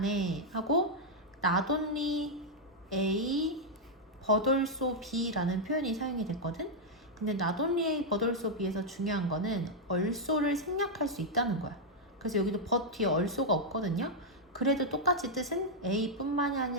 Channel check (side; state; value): both; normal; correlation -0.03